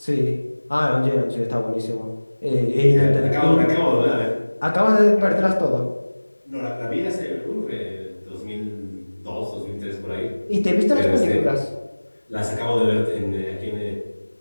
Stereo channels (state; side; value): inverted; both; correlation -1.00